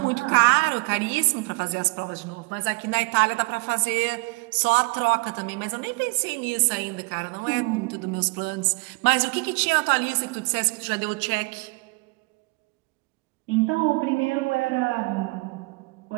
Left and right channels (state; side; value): quieter; left; 28.0 dB